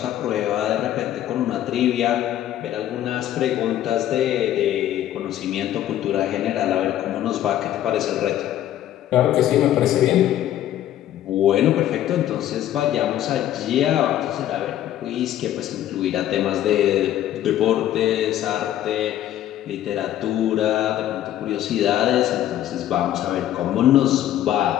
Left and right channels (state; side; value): quieter; right; 12.3 dB